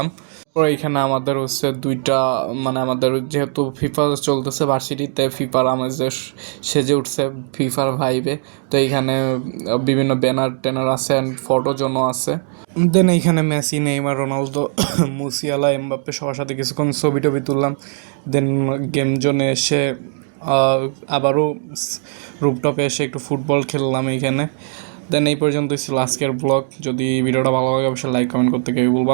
পরে এখানে আমাদের দুইটা, মানে আমাদের যেহেতু ফিফা চলতেছে ভার্সিটিতে, ফিফার আমাদের সেজে উঠছে ফিফার ভাইবে। তো এইখানে বিভিন্ন ব্যানার ট্যানার আছে অ্যান্ড ফটো জোনও আছে। দেন এইখানে Messi, Neymar, Ronaldo, Musiala, Mbappe সবার সাথে কিছুক্ষণ ছবি টবি তুললাম। দেন গেম জোনে এসে আবারও রুপটপে এসে একটু ফুটবল খেললাম এইখানে। দেন এই পর্যন্তই ছিল আজকের ব্লগ। যদি ভিডিওটা ভালো লাগে অবশ্যই লাইক কমেন্ট করতে কেউ বলবো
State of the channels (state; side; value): silent; left; 55 dB below the other